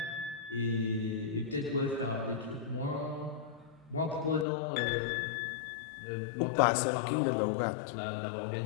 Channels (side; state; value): right; drops out; at 4.5 s